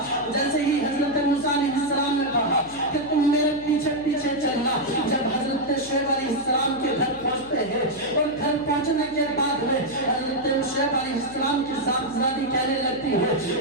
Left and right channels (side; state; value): left; noise; hum, 20 dB below the sound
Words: جیسے ہی حضرت موسیٰ علیہ السلام نے کہا کہ تم میرے پیچھے پیچھے چلنا, جب حضرت شعیب علیہ السلام کے گھر پہنچتے ہیں اور گھر پہنچنے کے بعد میں حضرت شعیب علیہ السلام کی صاحبزادی کہنے لگتی